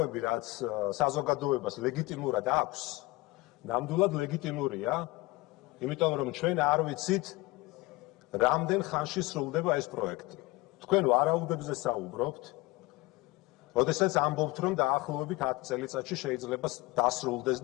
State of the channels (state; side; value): quieter; right; 21.6 dB